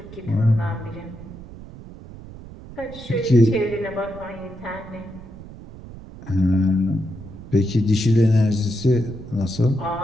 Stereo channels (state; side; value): noise; right; rumble, 16 dB below the sound